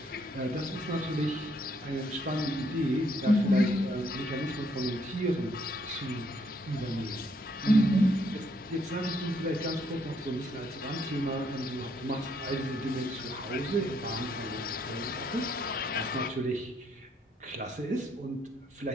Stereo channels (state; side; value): normal; both; correlation 0.71